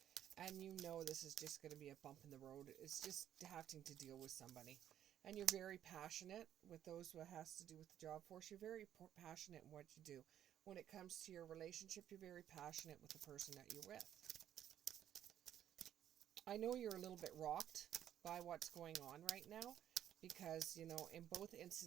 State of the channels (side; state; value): left; quieter; 10.7 dB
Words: And you know this is just going to be a bump in the road. It's just having to deal with somebody. And you're very passionate with those who has to do with the job force. You're very passionate in what you do. When it comes to your relationship, you're very passionate with the person that you're with. I know you're a little bit rocked by what's going on right now, because, you know, in both